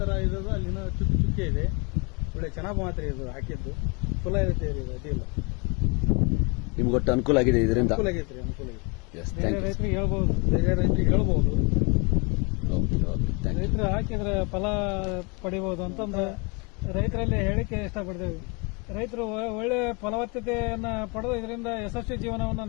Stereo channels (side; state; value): right; quieter; 30.5 dB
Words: ಇರೋದು ಅಲ್ಲಿನ ಚುಕ್ಕೆ ಇದೆ. ಒಳ್ಳೆ ಚೆನ್ನಾಗ್ ಬಂತ್ರಿ ಇದು ಹಾಕಿದ್ದು. ಚಲೋ ಐತೆ ರೀ. ಅದಿಲ್ಲ, ನಿಮ್ಗೆ ಒಟ್ಟು ಅನುಕೂಲ ಆಗಿದೆ ಇದರಿಂದ? ಅನುಕೂಲ ಆಗೈತ್ರಿ, ಅನುಕೂಲ ಆಗೈತಿ. ಬೇರೆ ರೈತರಿಗೆ ಹೇಳ್ಬಹುದು, ಬೇರೆ ರೈತರಿಗೆ ಹೇಳ್ಬಹುದು. ರೈತರು ಹಾಕಿದ್ರೆ ಫಲ ಪಡಿಬಹುದು ಅಂತಂದ್ರೆ ರೈತರಲ್ಲಿ ಹೇಳಿಕೆ ಇಷ್ಟಪಡ್ತೇವೆ. ರೈತರು ಒಳ್ಳೆ ಫಲವತ್ತತೆಯನ್ನ ಪಡೆದು ಇದರಿಂದ ಯಶಸ್ವಿ ಜೀವನವನ್ನು